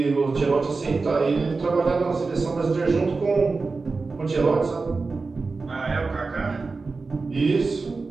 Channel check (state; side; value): quieter; left; 4.0 dB